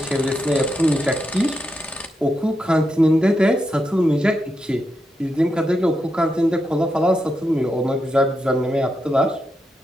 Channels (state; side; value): normal; both; correlation 0.85